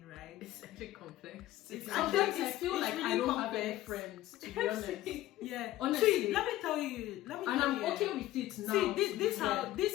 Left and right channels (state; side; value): quieter; right; 15.1 dB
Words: right? It's actually complex. Sometimes I feel like really I don't complex. have any friends, to be honest. Yeah. Honestly. See, let me tell you. And I'm okay with it now. See,